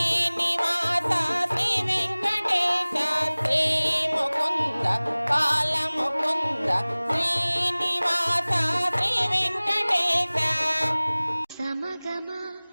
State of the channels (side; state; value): both; inverted; correlation -1.00